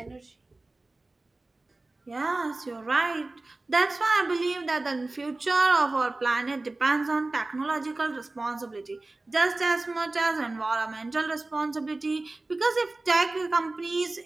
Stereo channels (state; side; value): quieter; left; 3.1 dB